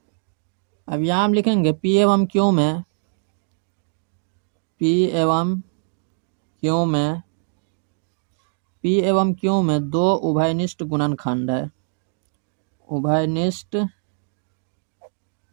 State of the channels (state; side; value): silent; left; digital silence